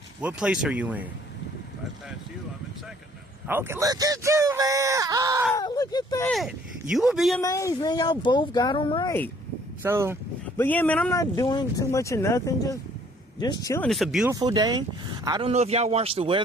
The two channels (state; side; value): normal; both; correlation 0.59